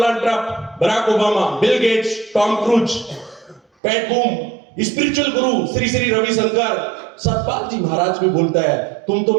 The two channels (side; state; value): left; drops out; at 3.6 s